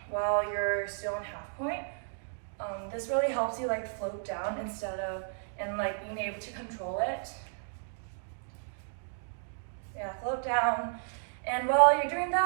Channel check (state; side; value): silent; left; digital silence